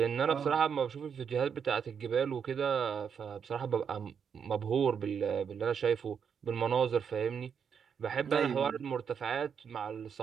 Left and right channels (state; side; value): quieter; left; 7.1 dB